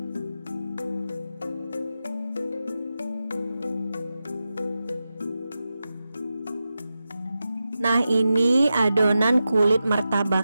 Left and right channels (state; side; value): inverted; both; correlation -0.91